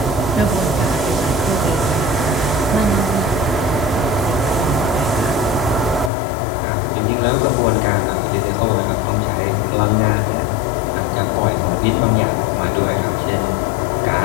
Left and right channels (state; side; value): drops out; right; at 6.1 s